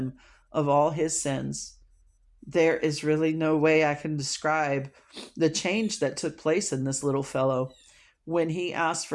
of all his sins. There is really no way I can describe the change that took place in this little fellow. When he asked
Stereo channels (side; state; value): both; identical; correlation 1.00